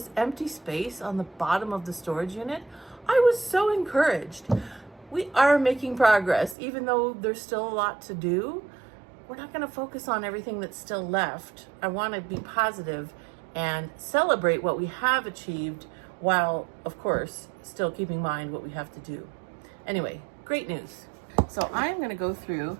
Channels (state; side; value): drops out; left; at 6.6 s